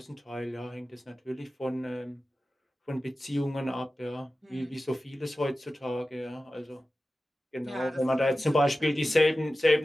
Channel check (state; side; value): normal; both; correlation 0.95